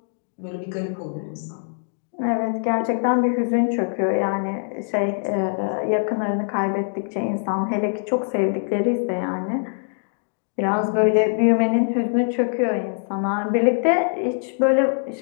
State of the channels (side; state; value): right; silent; digital silence